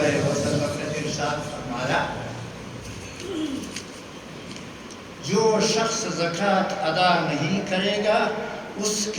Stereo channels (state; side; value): identical; both; correlation 1.00